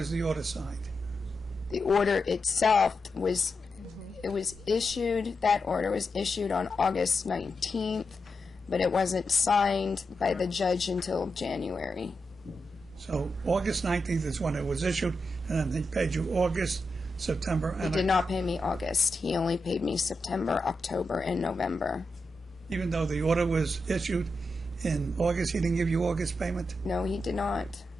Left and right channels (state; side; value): normal; both; correlation 0.87